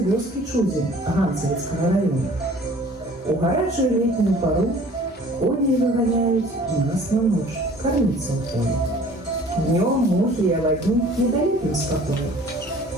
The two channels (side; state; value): both; normal; correlation 0.50